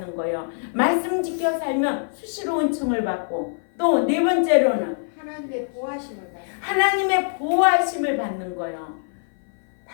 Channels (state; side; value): silent; right; 57 dB below the other